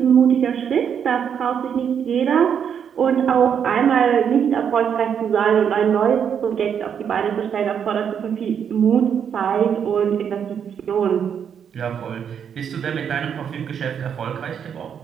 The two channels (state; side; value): quieter; left; 7.9 dB